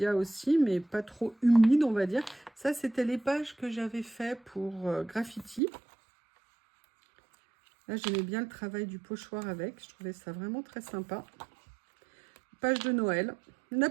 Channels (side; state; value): left; drops out; at 5.6 s